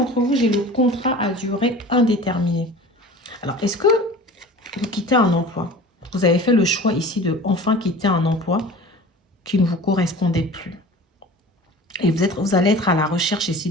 vous, j'ai le contrat à durée indéterminée. Alors, est-ce que vous quittez un emploi? Vous avez fait le choix ici de enfin quitter un emploi qui ne vous correspondait plus. Et vous allez être à la recherche ici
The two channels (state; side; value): normal; both; correlation 0.40